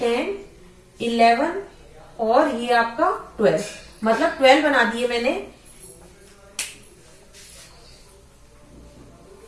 11 और ये आपका 12, मतलब 12 बना दिए मैंने।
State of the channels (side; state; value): both; identical; correlation 1.00